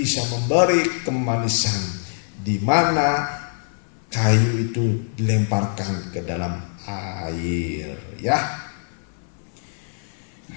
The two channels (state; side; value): silent; right; 60 dB below the other